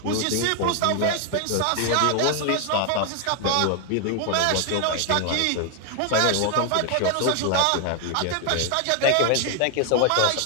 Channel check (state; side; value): different; both; correlation 0.00